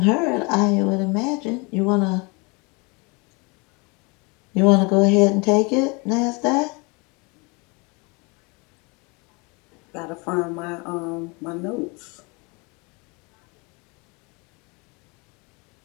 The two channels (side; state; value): right; quieter; 29.1 dB